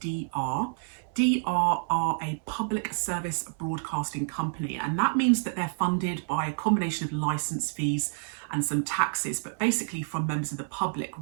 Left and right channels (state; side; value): silent; left; 59 dB below the other